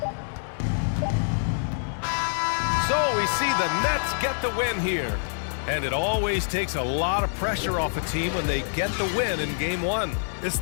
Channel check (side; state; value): right; silent; digital silence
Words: So we see the Nets get the win here. And it always takes a lot of pressure off a team when they get the win in Game 1. It's